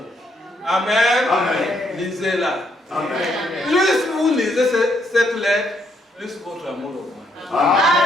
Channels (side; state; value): both; normal; correlation 0.73